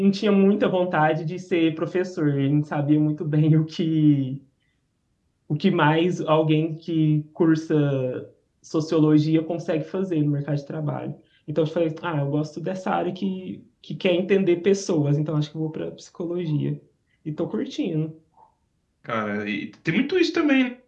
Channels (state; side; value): identical; both; correlation 1.00